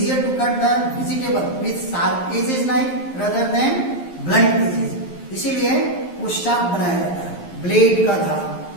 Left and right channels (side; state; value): right; late; 11 ms